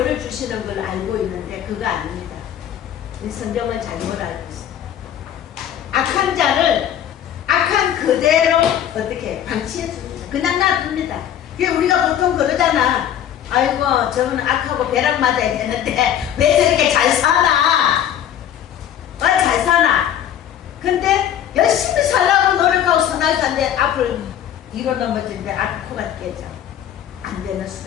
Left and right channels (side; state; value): right; quieter; 10.3 dB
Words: 주시는 걸 알고 있는데 그거 아닙니다. 성경은 잘못 알고 있습니다. 악한 자를 악한 그대로 어떻게 방치해 줍니다. 그냥 놔둡니다. 우리가 보통 그러잖아. 아이고 저는 악하고 벼락 맞아야 되는데 왜 저렇게 잘 살아? 잘 잘 사나? 근데 열심히 살라고 노력하고 선할 산데 앞을 뒤로 넘어지는데 앞 코가 깨져. 안 되는